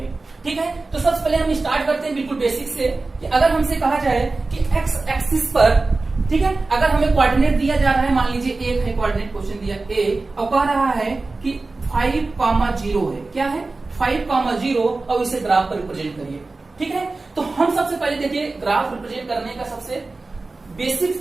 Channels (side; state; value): left; quieter; 3.5 dB